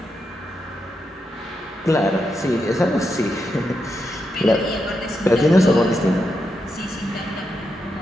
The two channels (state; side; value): normal; both; correlation 0.85